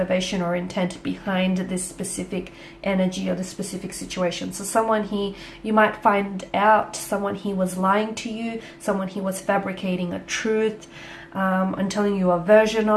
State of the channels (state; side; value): identical; both; correlation 1.00